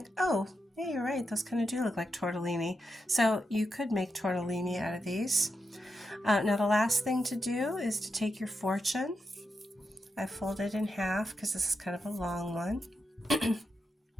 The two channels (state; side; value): normal; both; correlation 0.86